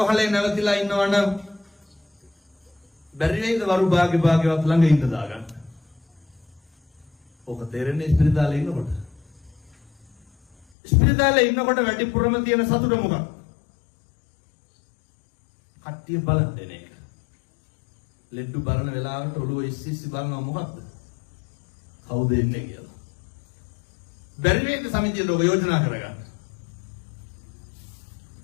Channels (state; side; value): drops out; right; at 10.7 s